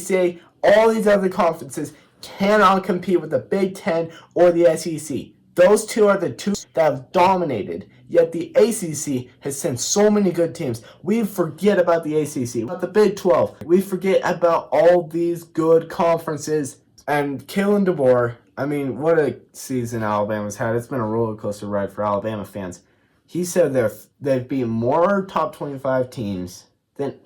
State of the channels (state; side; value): identical; both; correlation 1.00